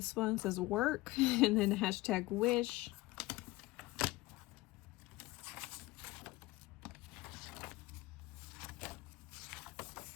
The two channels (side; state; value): right; quieter; 19.7 dB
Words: one says work and then hashtag wish.